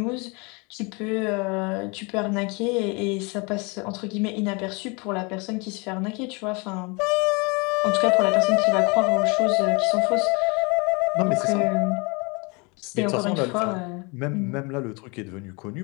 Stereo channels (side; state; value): right; quieter; 29.7 dB